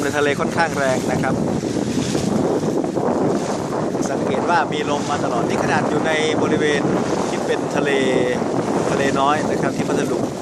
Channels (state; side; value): identical; both; correlation 1.00